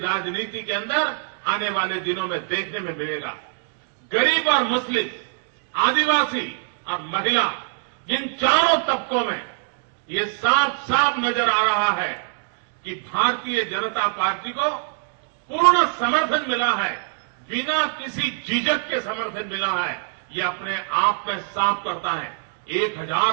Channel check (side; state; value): left; silent; digital silence